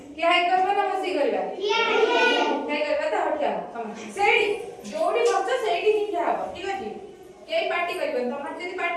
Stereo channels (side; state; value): both; identical; correlation 1.00